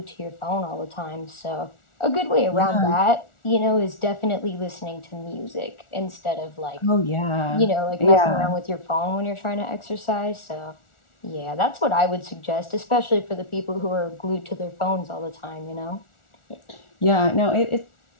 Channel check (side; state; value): right; late; 1.4 ms